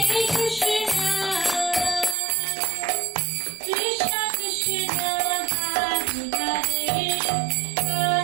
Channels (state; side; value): drops out; left; at 2.1 s